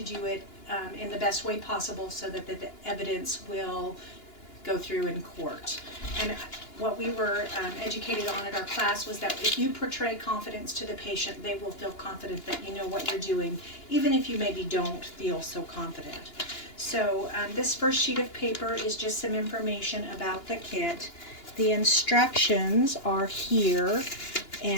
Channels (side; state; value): right; late; 2.9 ms